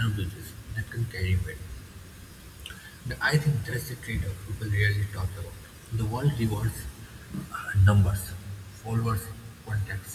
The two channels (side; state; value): both; identical; correlation 1.00